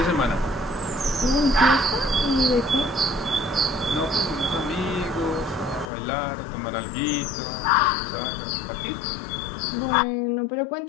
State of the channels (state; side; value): drops out; right; at 5.9 s